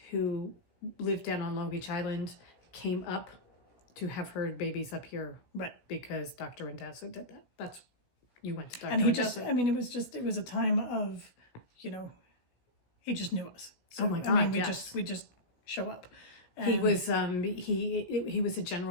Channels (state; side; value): late; right; 16 ms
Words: who lived down on Long Beach Island, came up to have her babies up here. Right. Because Dr. Rendazzo did that. That's You went to Dr. And he just, Desert. I mean, it was a time of, you know, he just knew us. So, Oh my I mean, God, we yes. just show up. He And was he was a